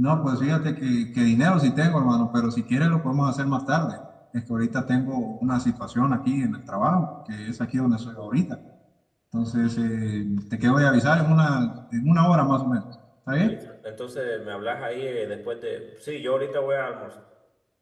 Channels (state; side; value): identical; both; correlation 1.00